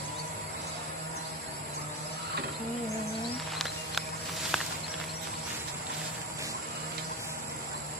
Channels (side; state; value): both; normal; correlation 0.21